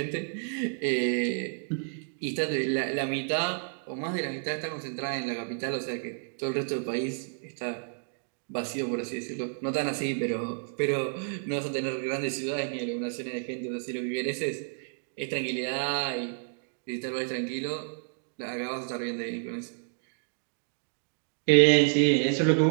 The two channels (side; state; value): left; silent; 58 dB below the other